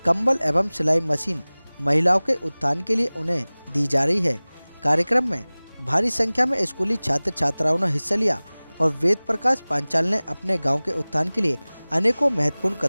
कंबल एवं सिलाई मशीन महिलाओं के उत्थान के लिए उन्हें दी जा रही है। कार्यक्रम में भारी संख्या में स्कूली छात्र छात्राओं ने हिस्सा लिया और वेद प्रकाश पांचाल ने अपने गांव के उत्थान के लिए अनेकों महत्वपूर्ण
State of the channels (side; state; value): both; inverted; correlation -1.00